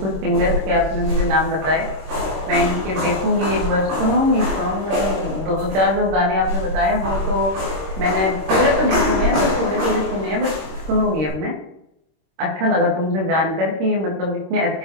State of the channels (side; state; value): left; late; 26 ms